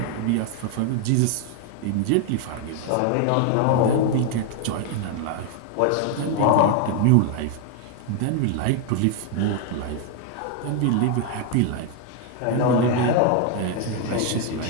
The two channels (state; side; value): different; both; correlation 0.00